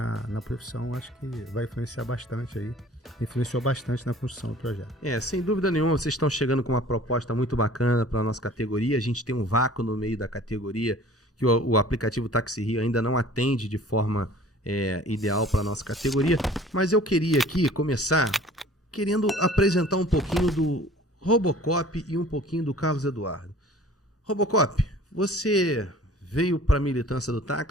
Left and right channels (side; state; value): both; normal; correlation 0.48